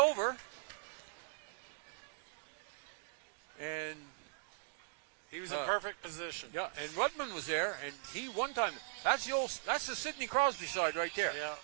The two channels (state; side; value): silent; left; digital silence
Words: And he was in perfect position. Yeah, and Rudman was there, and he one time. That's the Sidney Crosby side right there.